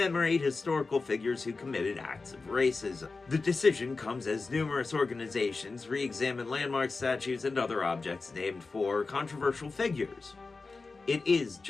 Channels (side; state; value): right; quieter; 4.0 dB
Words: historical figures who committed acts of racism. The decision comes as numerous organizations re-examine landmarks, statues, and other objects named for controversial figures. It is